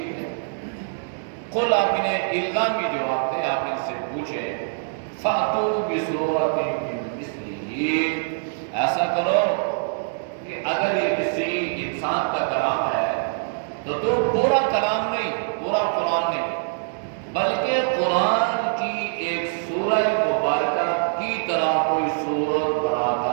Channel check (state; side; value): silent; left; digital silence